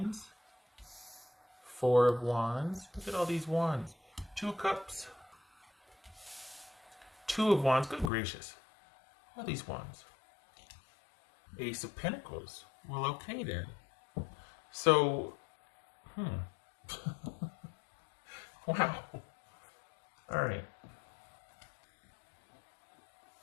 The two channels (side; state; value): right; drops out; at 8.1 s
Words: Four of Wands. Look at all these wands. Two Cups. Two of Wands. Good gracious. All these wands. Ace of Pentacles. Well, okay then. So, wow. All right.